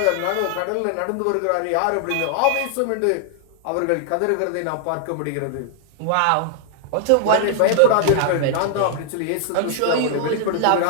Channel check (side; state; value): both; different; correlation 0.00